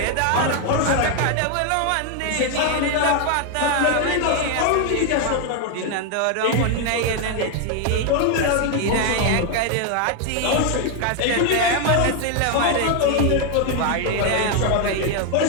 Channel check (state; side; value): different; both; correlation 0.01